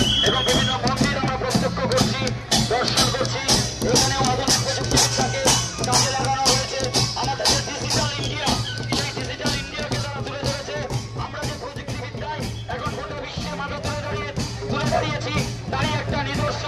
এবং বিভিন্ন মন্দির আমরা প্রত্যক্ষ করছি, দর্শন করছি। এখানেও আধুনিক প্রযুক্তিবিদ্যাকে কাজে লাগানো হয়েছে। আমাদের যে ডিজিটাল ইন্ডিয়া, সেই ডিজিটাল ইন্ডিয়াকে তারা তুলে ধরেছে। আমরা যে প্রযুক্তিবিদ্যায় এখন গোটা বিশ্বের মাঝে তুলে দাঁড়িয়েছি, তারই একটা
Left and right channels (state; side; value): identical; both; correlation 1.00